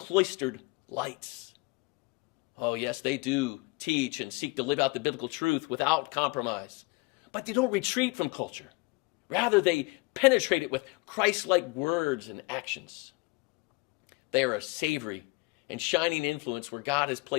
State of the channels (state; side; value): quieter; right; 26.1 dB